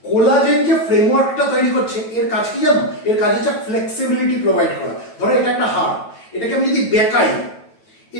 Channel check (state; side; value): late; right; 9.1 ms